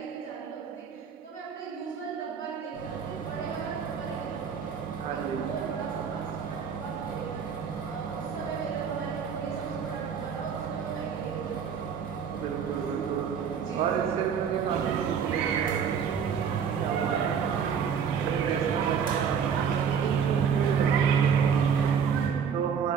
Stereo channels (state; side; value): quieter; left; 7.1 dB